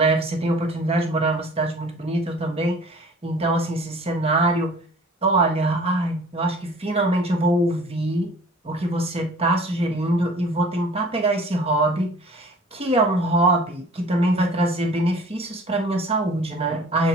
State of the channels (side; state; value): both; normal; correlation 0.48